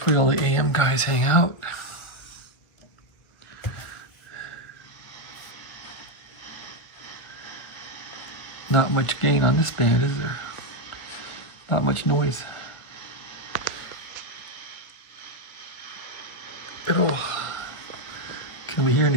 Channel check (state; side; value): late; right; 1.5 ms